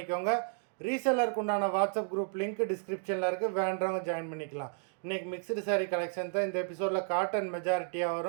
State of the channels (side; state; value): left; silent; 56 dB below the other